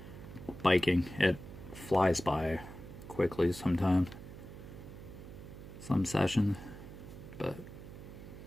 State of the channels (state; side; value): noise; right; hum, 14 dB below the sound